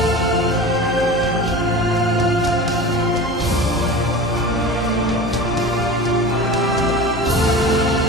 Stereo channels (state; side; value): normal; both; correlation 0.33